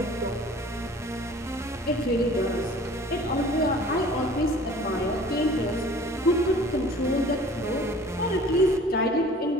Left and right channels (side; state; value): both; normal; correlation 0.48